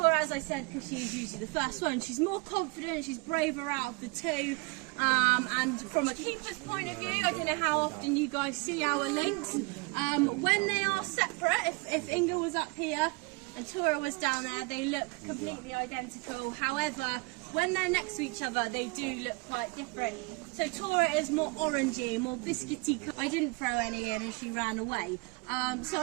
as I said, because she is usually the first one. She's more confident, she's braver out of the two. And from a keeper's point of view, I don't know how often you guys see our lynx. When they are separate, if Inga was up here and Tora was down there, they look completely identical. However, when they're next to each other, they do look quite different. So Tora is more orangey, more biscuity. I didn't throw any in and she ran away. So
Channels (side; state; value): left; quieter; 27.7 dB